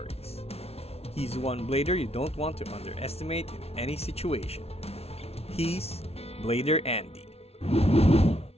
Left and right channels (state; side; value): late; right; 0.30 ms